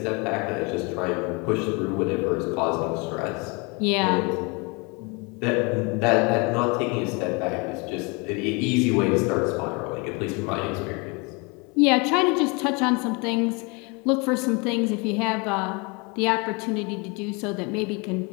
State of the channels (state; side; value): quieter; right; 29.7 dB